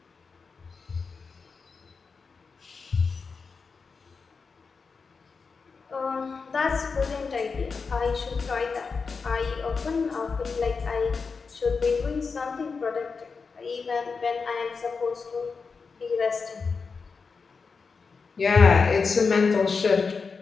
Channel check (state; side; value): quieter; right; 5.0 dB